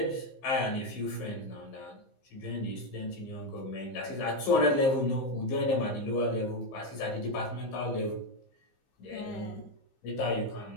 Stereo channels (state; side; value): late; right; 15 ms